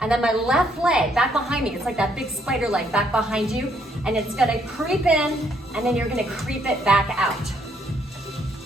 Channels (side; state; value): both; normal; correlation 0.70